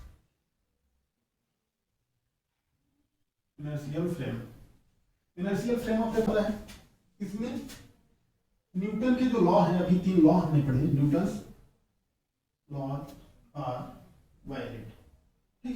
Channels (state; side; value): identical; both; correlation 1.00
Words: inertial frame, inertial frame of reference है। इसमें न्यूटन के जो लॉ हैं, अभी 3 लॉ हमने पढ़े, न्यूटन्स लॉ आर वैलिड,